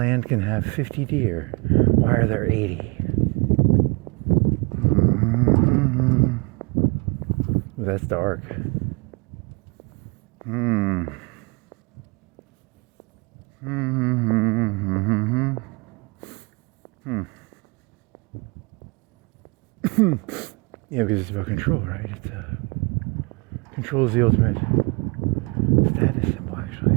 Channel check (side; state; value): left; quieter; 29.5 dB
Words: can have 50 deer. Why are there 80? Ooh, that's dark. Yeah, because it's about control, right? It's control is the ultimate status symbol,